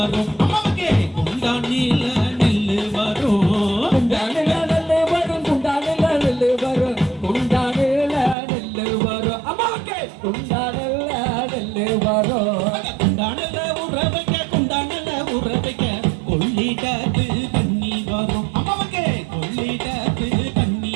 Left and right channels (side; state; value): left; drops out; at 8.3 s